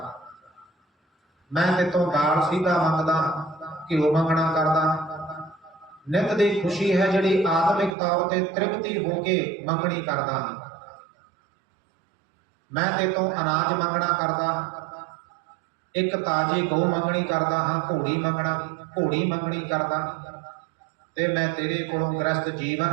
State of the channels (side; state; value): left; drops out; at 8.0 s